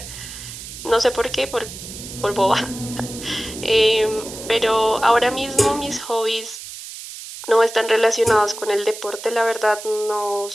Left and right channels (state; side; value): noise; right; hiss, 12 dB below the sound